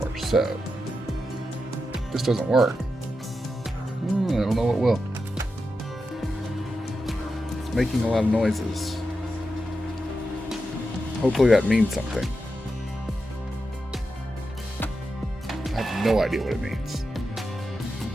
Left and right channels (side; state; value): both; normal; correlation 0.88